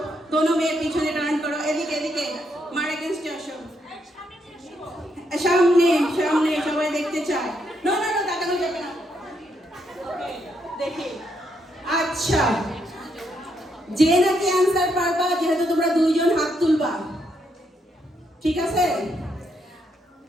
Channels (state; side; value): normal; both; correlation 0.77